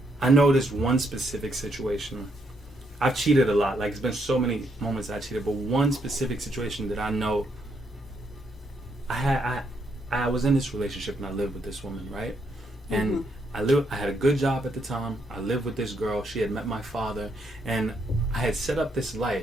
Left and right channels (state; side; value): normal; both; correlation 0.76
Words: I know this one specific situation. I've cheated a lot. Like, it's been so many moments I cheated, but one specific situation that I know, I was in this relationship and I lived with this woman, right? And I had a good job at the time. I lived with this girl. She had met my father, and I had set up this